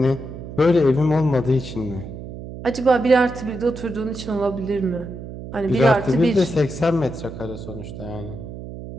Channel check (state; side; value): noise; right; hum, 11 dB below the sound